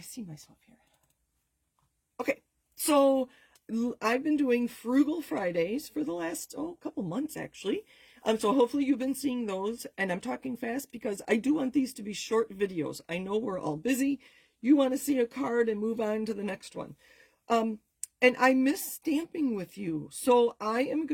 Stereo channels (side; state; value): both; identical; correlation 1.00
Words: see myself here. Okay. So I've been doing Frugal Fridays for the last couple months actually. So hopefully you've been seeing those, and I'm talking fast because I do want these to be short videos. I know we're all busy. You want to see a card and move on to the next one. And I miss stamping with you. So I am